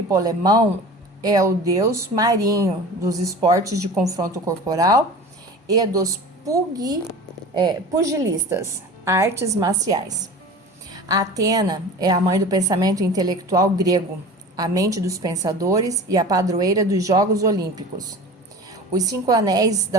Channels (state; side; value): normal; both; correlation 0.37